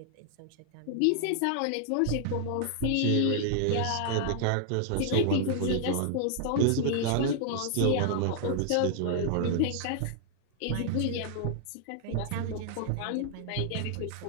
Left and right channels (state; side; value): different; both; correlation -0.01